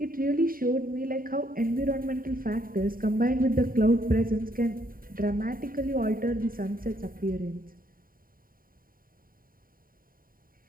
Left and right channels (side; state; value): left; late; 0.41 ms